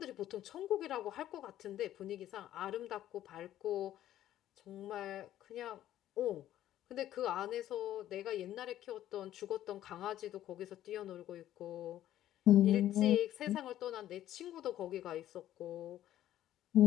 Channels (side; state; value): right; quieter; 12.6 dB